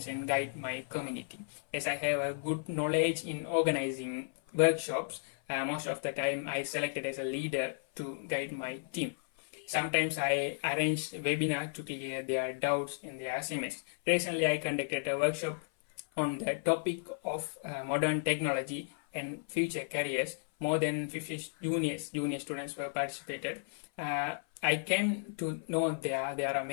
and guide my community. As I have a good knowledge in organizing workshops, most of the time I selected as a leader to guide my team. Sometimes I arrange webinar to clear their doubts in their assignments. Recently, I conducted a workshop on the topic of modern technology and future careers. More than 50 junior students were participated. I came to know there are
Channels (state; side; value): silent; right; 55 dB below the other